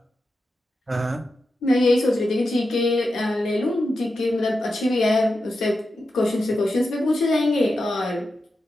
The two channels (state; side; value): normal; both; correlation 0.89